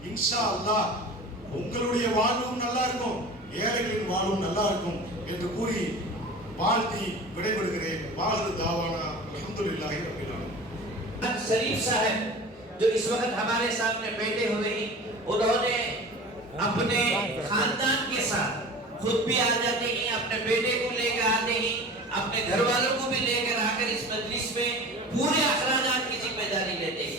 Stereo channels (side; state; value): both; normal; correlation 0.37